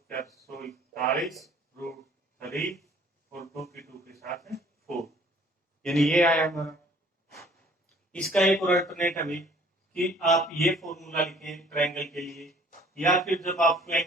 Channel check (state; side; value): normal; both; correlation 0.55